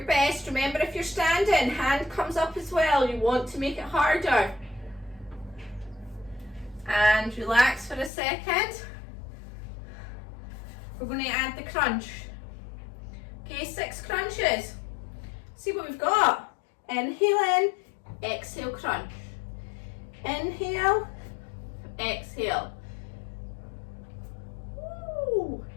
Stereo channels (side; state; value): right; drops out; at 8.1 s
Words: best. Remember, if you're standing, hand comes up as well. You want to make it harder. And relax for a second. We're going to add the crunch. Okay, 6 crunches. See what we've got. Inhale in, exhale crunch. Inhale, exhale. Woo.